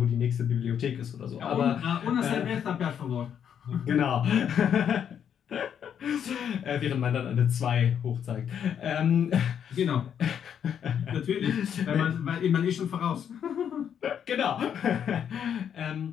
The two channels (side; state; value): right; quieter; 8.6 dB